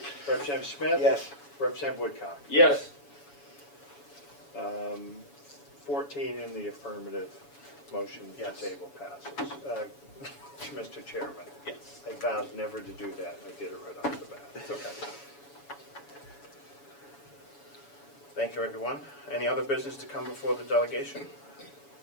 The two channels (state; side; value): late; right; 7.1 ms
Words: Representative Smith? Yes. Representative Woodcock? Yes. 14 in the affirmative, motion to Yes. table passes. Mr. Chairman, Yes. I vowed never to do that, I did it right off the bat. It's okay. Thank you, everyone. Any other business to come before the delegation?